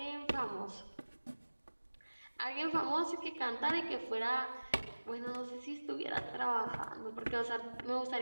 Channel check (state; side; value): inverted; both; correlation -1.00